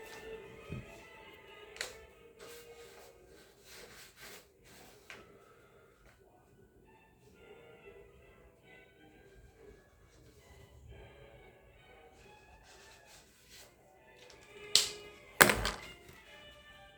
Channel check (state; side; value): identical; both; correlation 1.00